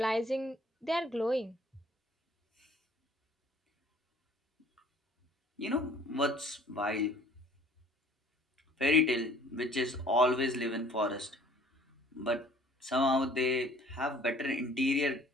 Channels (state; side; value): normal; both; correlation 0.54